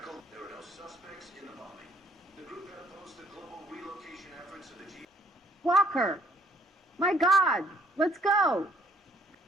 There were no suspects in the bombing. The group had opposed the global relocation efforts of the G. Walker! My God! Let's go!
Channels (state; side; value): normal; both; correlation 0.61